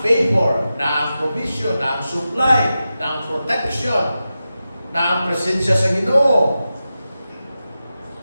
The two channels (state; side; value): inverted; both; correlation -0.92